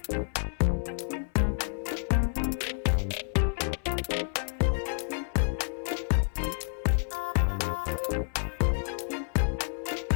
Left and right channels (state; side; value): silent; right; 57 dB below the other